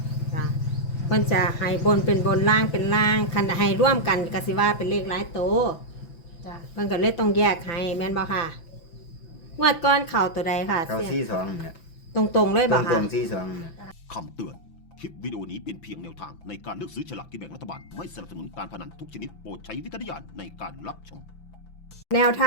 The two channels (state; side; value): late; right; 5.9 ms